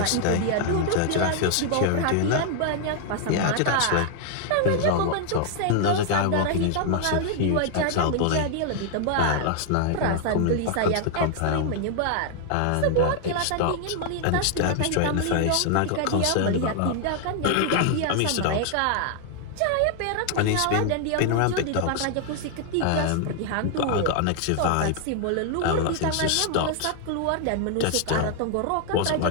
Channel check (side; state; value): both; different; correlation 0.00